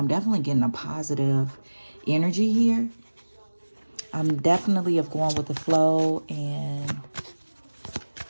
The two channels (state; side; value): inverted; both; correlation -1.00